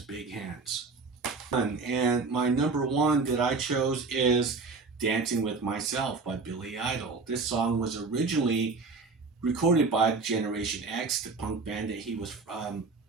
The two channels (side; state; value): left; quieter; 4.2 dB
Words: big hands. And my number 1 that I chose is Dancing with Myself by Billy Idol. This song was originally recorded by Generation X, the punk band that he was